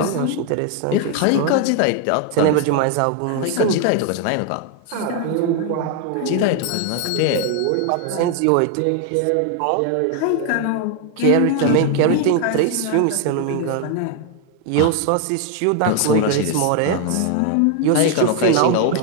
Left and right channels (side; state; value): both; different; correlation 0.01